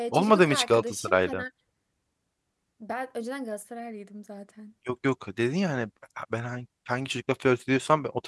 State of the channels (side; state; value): both; identical; correlation 1.00